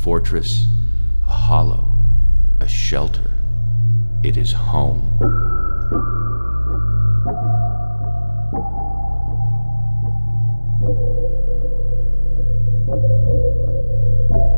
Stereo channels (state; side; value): inverted; both; correlation -1.00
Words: a hollow, a shelter. It is home.